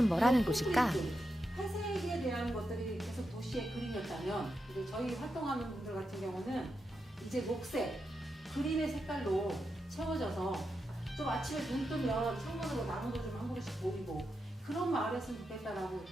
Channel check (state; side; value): normal; both; correlation 0.87